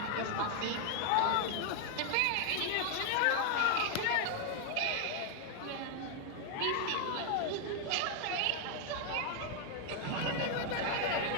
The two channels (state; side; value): different; both; correlation 0.00